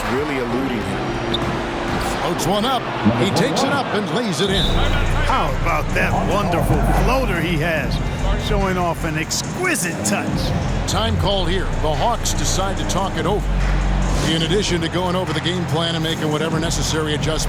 really eluding him. Floats one up. He takes it up and lays it in. How about that wonderful floater he has, showing off an exquisite touch. Time called here. The Hawks decide to talk it over. In addition to going over the game plan and making whatever necessary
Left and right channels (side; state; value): both; identical; correlation 1.00